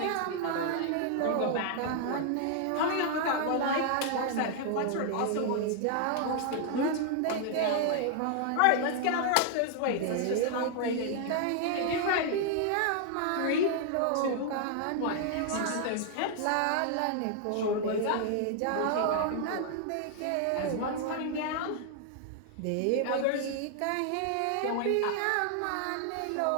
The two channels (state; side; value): different; both; correlation 0.00